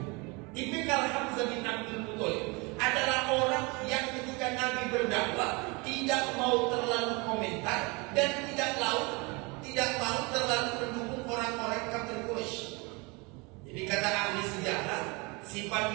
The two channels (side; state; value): left; quieter; 27.9 dB